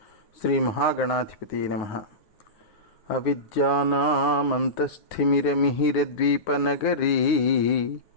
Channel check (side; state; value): right; late; 9.6 ms